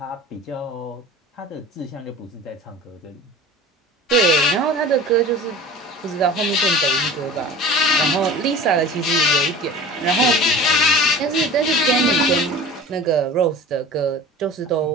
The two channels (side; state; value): both; normal; correlation 0.39